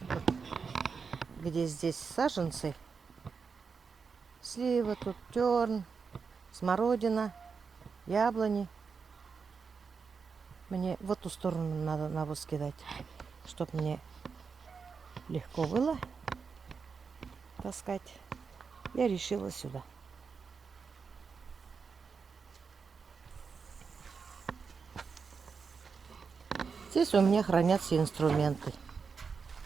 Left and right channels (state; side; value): quieter; left; 5.5 dB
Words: где здесь саженцы, слива, тут терн, смородина, яблони. Мне в эту сторону надо навоз кидать, чтобы мне легко было таскать. Я решила сюда. Здесь у меня хранятся инструменты.